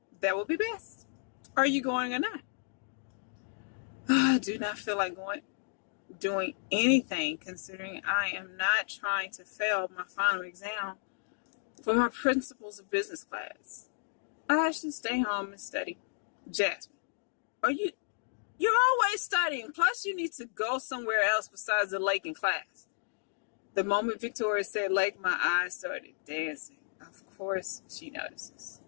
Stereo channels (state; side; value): silent; right; digital silence